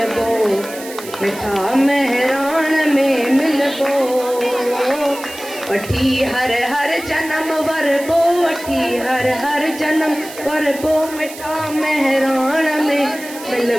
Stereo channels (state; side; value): noise; right; hiss, 14 dB below the sound